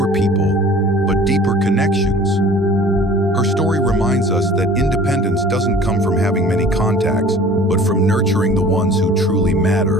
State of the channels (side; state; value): both; normal; correlation 0.47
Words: people, but deeper connections. Her story reminds us that independence doesn't come from having many contacts, but from nurturing the ones who truly